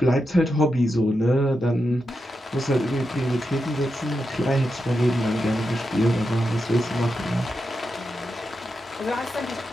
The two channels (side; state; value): both; normal; correlation 0.87